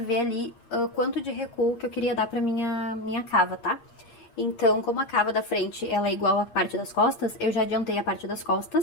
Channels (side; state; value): right; late; 8.5 ms